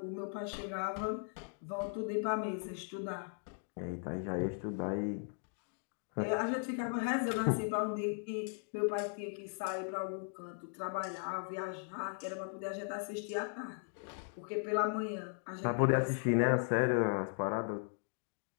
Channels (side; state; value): right; silent; 53 dB below the other